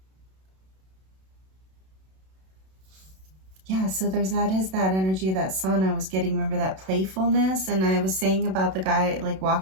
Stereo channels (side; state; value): left; late; 32 ms